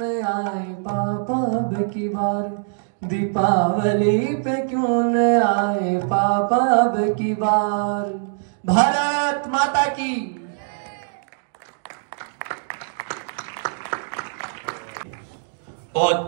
आए पापा अब की बार, दीपावली पे क्यों न आए पापा अब की बार। भारत माता की।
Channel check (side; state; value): left; silent; digital silence